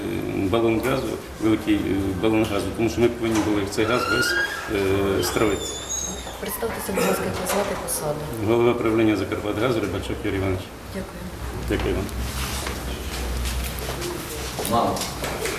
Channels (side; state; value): both; identical; correlation 1.00